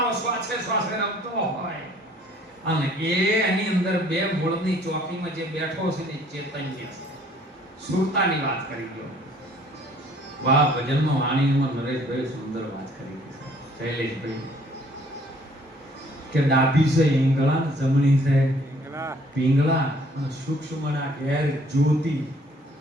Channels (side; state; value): both; normal; correlation 0.58